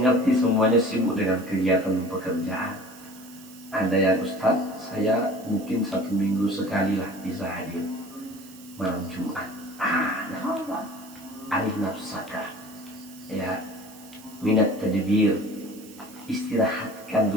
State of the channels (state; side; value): noise; right; hiss, 20 dB below the sound